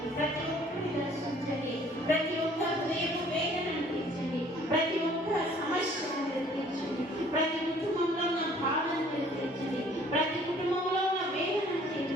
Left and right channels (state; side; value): normal; both; correlation 0.56